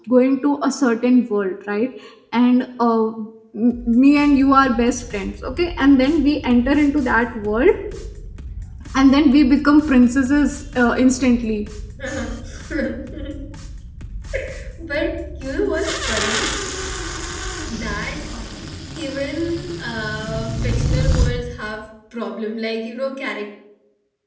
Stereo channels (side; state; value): both; identical; correlation 1.00